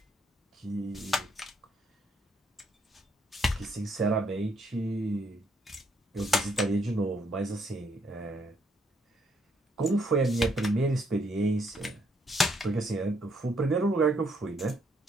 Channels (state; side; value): normal; both; correlation 0.72